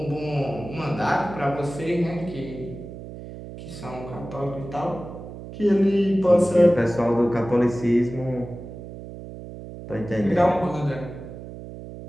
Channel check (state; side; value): noise; right; hum, 12 dB below the sound